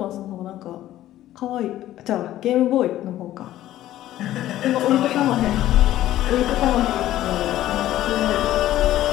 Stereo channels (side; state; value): right; quieter; 13.8 dB